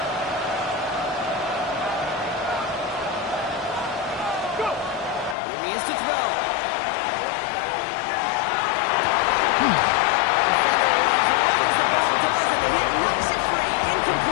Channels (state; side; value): drops out; right; at 5.4 s